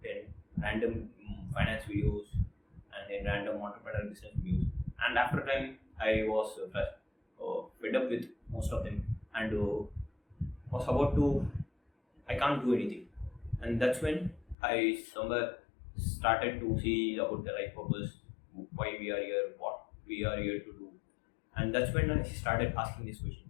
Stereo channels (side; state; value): right; drops out; at 14.6 s